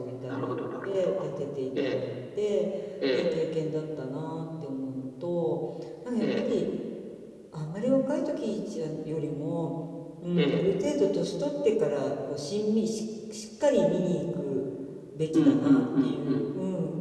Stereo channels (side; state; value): both; identical; correlation 1.00